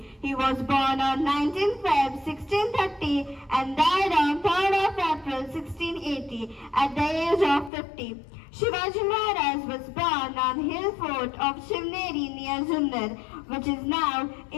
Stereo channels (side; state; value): right; drops out; at 7.7 s